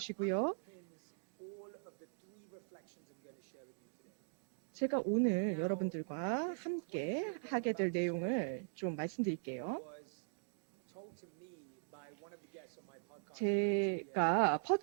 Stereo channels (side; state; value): left; silent; digital silence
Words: 제가 오늘 여러분들과 함께 하게 될 내용을 좀 말씀드릴게요. 제가